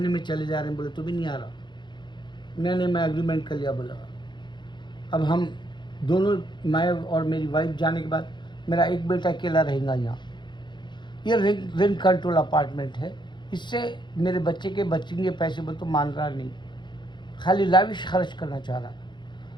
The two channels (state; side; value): late; right; 0.22 ms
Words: में चले जा रहे हैं। बोले तो भी नहीं आ रहा। मैं एग्रीमेंट कर लिया, बोला अब हम दोनों, मैं और मेरी वाइफ जाने के बाद मेरा एक बेटा अकेला रहेगा यहाँ। ये रेंट कंट्रोल अपार्टमेंट है, इससे मेरे बच्चे के बचेंगे पैसे, बोले तो मान रहा नहीं, खाली लाविश खर्च करना चाह रहा है।